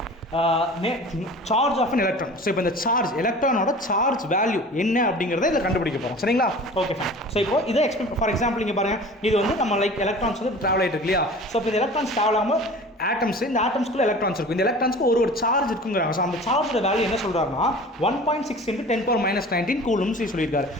charge of an electron. So இப்போ இந்த சார்ஜ் எலக்ட்ரானோட சார்ஜ் வேல்யூ என்ன அப்படிங்கிறத இதில் கண்டுபிடிக்க போகிறோம் சரிங்களா. Okay fine. ஸோ இப்போ இதை ஃபார் எக்ஸாம்பிள் இங்கே பாருங்கள், இது வந்து நம்ம லைக் எலக்ட்ரான்ஸ் வந்து ட்ராவல் ஆகிட்டு இருக்கு இல்லையா. ஸோ இப்போ இந்த எலக்ட்ரான்ஸ் ட்ராவல் ஆகாமல் ஆட்டம்ஸ், இந்த ஆட்டம்ஸ்க்குள்ள எலக்ட்ரான்ஸ் இருக்கும். இந்த எலக்ட்ரான்ஸ்க்கு ஒரு சார்ஜ் இருக்குங்கிறாங்க. ஸோ அந்த சார்ஜோட வேல்யூ என்ன சொல்கிறாருன்னா 1.6 × 10⁻−19 கூலும்ஸ் சொல்லியிருக்காரு.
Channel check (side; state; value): both; normal; correlation 0.41